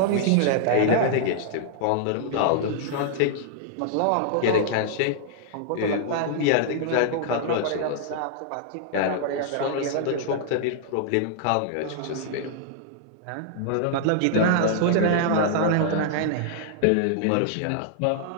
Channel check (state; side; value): different; both; correlation -0.01